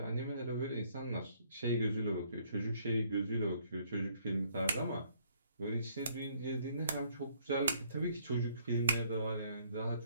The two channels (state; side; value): inverted; both; correlation -0.65